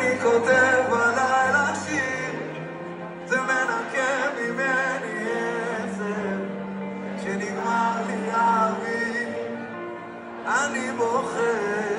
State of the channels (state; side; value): identical; both; correlation 1.00